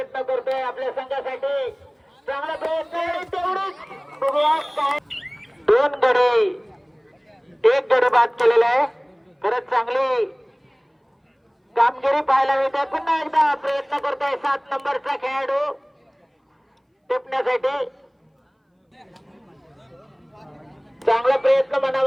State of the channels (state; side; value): identical; both; correlation 1.00